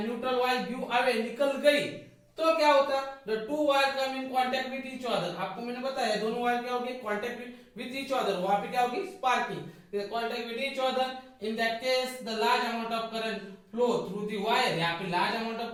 neutral wire give away, निकल गई, तो क्या होता, the two wire come in contact with each other, आपको मैंने बताया दोनों वायर क्या होगी, कांटेक्ट विद ईच अदर, वहां पे क्या होगी, sparking, contact with each other, in that case the large amount of current flow through the wire, यहाँ पे large amount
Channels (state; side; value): identical; both; correlation 1.00